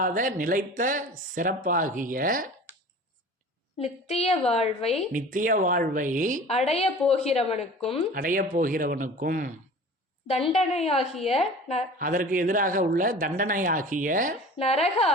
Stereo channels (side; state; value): both; normal; correlation 0.41